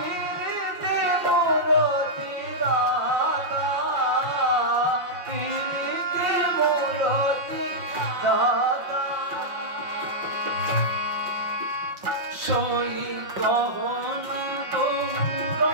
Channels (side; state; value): left; late; 5.5 ms